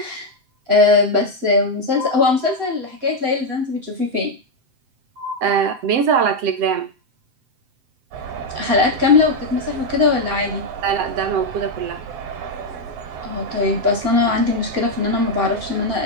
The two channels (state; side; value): late; left; 7.7 ms